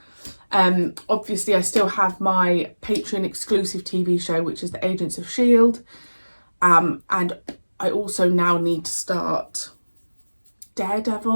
Obviously I still have my Patreon exclusive TV show, which is the Agents of S.H.I.E.L.D. And I also now need to start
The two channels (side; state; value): both; inverted; correlation -1.00